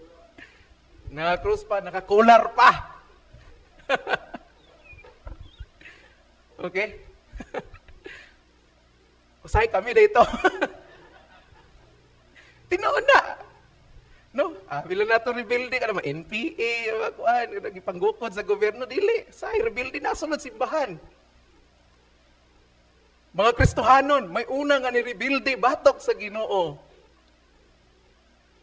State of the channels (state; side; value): identical; both; correlation 1.00